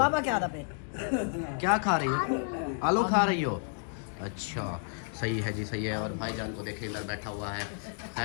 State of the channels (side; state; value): right; silent; 57 dB below the other